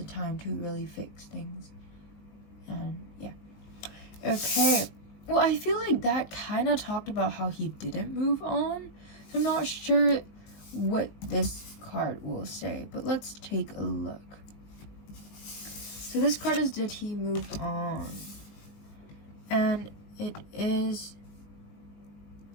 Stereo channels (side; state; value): right; late; 19 ms